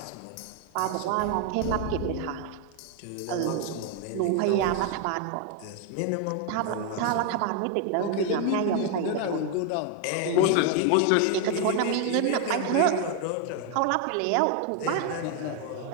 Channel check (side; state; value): both; different; correlation 0.01